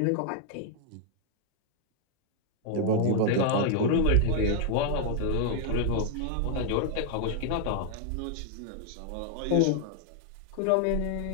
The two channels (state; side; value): different; both; correlation 0.00